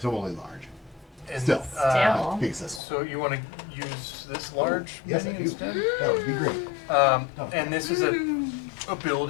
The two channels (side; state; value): right; drops out; at 2.8 s